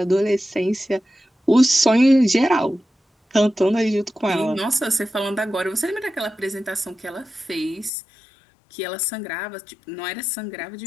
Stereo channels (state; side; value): drops out; right; at 7.9 s